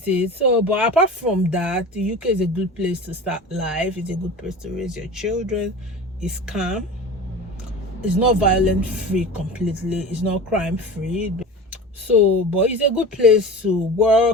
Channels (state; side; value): normal; both; correlation 0.33